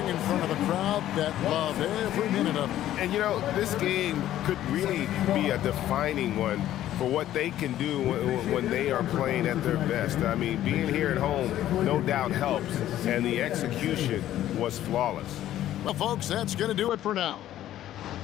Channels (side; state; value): right; quieter; 12.8 dB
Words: in front of a crowd that loved every minute of it. And, you know, this game could really be a defining one for what they can do when they are playing at their best. I mean, being here at home no doubt helps, and the execution was flawless. Well, folks, that's going to do it for now.